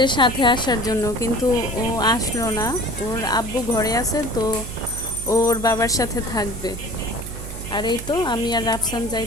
সাথে আসার জন্য, কিন্তু ও আসলো না। ওর আব্বু ঘরে আছে, তো ওর বাবার সাথে থাকবে। আর এই তো আমি আর রাফসান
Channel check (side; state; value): right; noise; hum, 10 dB below the sound